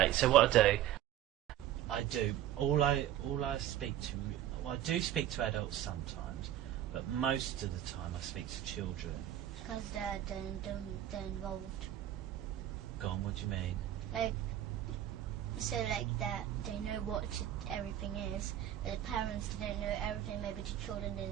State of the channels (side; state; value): left; quieter; 12.1 dB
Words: So what I do, all I speak to, well, I do speak to adults sometimes, but most of the time I speak to children. Because they're involved. Go on, what do you mean? Like that they know what everything is, but the parents didn't know everything. Maybe the children